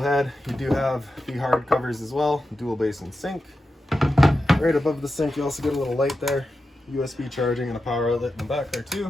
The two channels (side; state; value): both; normal; correlation 0.90